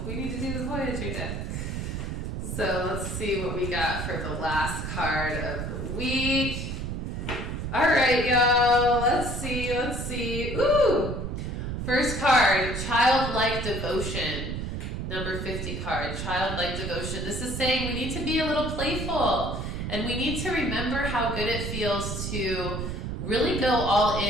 we need to do the Voyager deck. So let's see what we got for the last card of the week. All right, y'all, let's see. Ooh! First card, Childlike Devotion. Number 50 card, Childlike Devotion. This is saying we need to be a little playful, and we need to remember how good it feels to really go all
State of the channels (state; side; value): noise; right; rumble, 4 dB below the sound